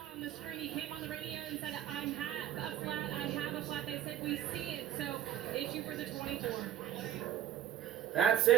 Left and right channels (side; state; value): left; quieter; 10.9 dB